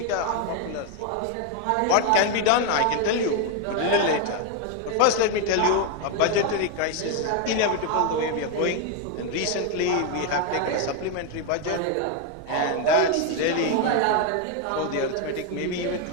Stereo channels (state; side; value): different; both; correlation 0.01